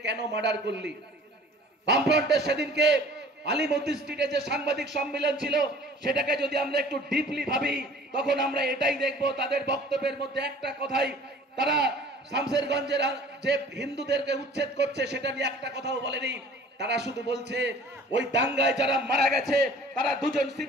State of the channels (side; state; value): both; normal; correlation 0.48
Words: কেন মার্ডার করলি? বামফ্রন্টের সেদিনকে আলিমুদ্দিন স্ট্রিটে যে সাংবাদিক সম্মেলন ছিল সেটাকে যদি আমরা একটু ডিপলি ভাবি তখন আমরা এটাই দেখব, তাদের বক্তব্যের মধ্যে একটা কথাই, তারা শামসেরগঞ্জের যে হিন্দুদেরকে উচ্ছেদ করছে সেটা নিয়ে একটা কথাও বলেনি। তারা শুধু বলছে ওই দাঙ্গায় যারা মারা গেছে তারা দুজন